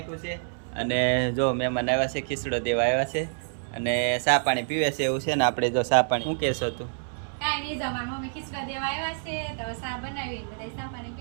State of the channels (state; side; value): silent; left; 60 dB below the other